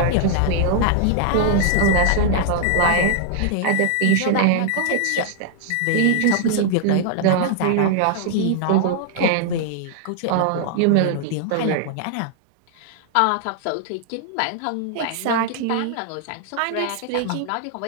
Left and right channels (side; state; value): both; different; correlation 0.00